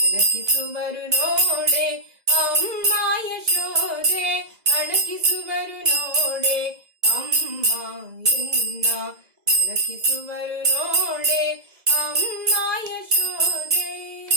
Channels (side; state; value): left; late; 2.0 ms